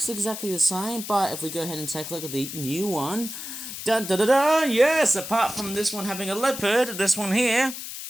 exactly the same, but if we go ahead and take a look at the new one. Dun da da da! Yes, apart from this one having a leopard, this one here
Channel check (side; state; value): left; noise; hiss, 9 dB below the sound